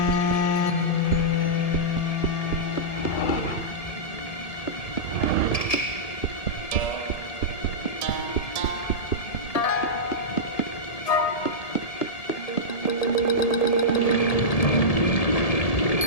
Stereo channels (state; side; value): late; right; 1.7 ms